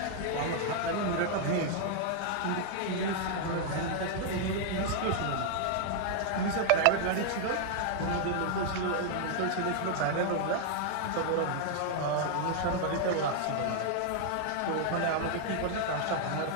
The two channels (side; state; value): both; different; correlation 0.00